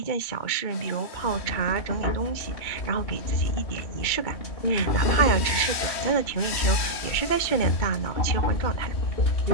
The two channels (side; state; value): right; late; 3.1 ms